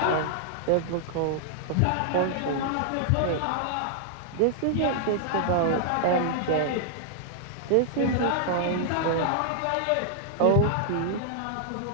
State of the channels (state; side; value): different; both; correlation -0.01